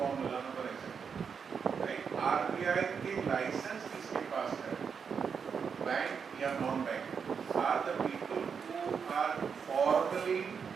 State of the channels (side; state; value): left; quieter; 6.4 dB